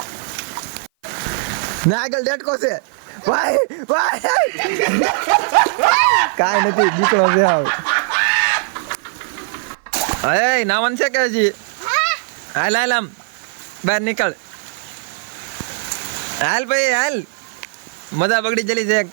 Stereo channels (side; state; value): left; silent; 55 dB below the other